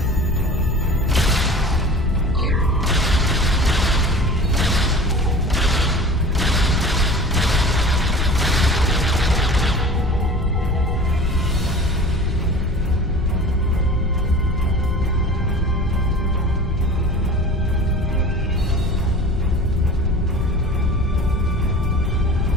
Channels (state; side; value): normal; both; correlation 0.40